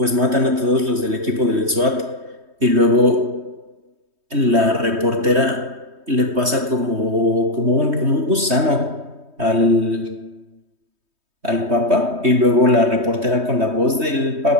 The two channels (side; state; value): left; late; 3.2 ms